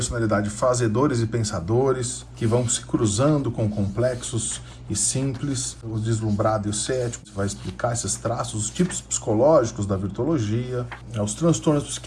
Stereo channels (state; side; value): identical; both; correlation 1.00